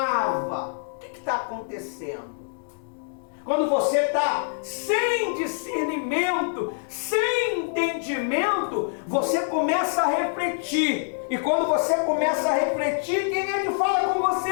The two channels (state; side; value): silent; right; digital silence